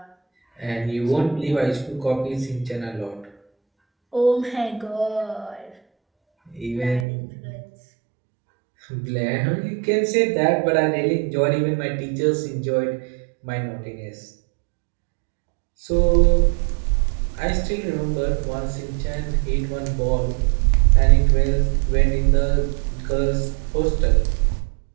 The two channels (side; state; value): left; drops out; at 7.1 s